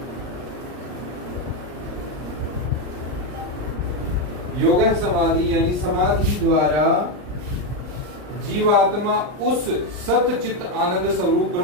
योग समाधि यानी समाधि द्वारा जीवात्मा उस सतचित आनंद स्वरूप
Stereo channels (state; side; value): late; left; 39 ms